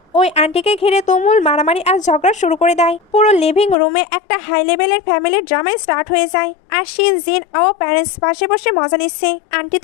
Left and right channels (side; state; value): right; drops out; at 3.8 s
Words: ওই আন্টিকে ঘিরে তুমুল মারামারি আর ঝগড়া শুরু করে দেয়। পুরো লিভিং রুমে একটা হাই লেভেলের ফ্যামিলির ড্রামাই স্টার্ট হয়ে যায়। আর শিন, জিন ও প্যারেন্টস পাশে বসে মজা নিচ্ছে। আন্টি